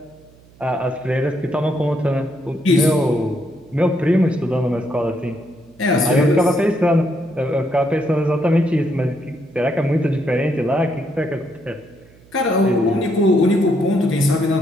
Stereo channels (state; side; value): noise; right; hum, 27 dB below the sound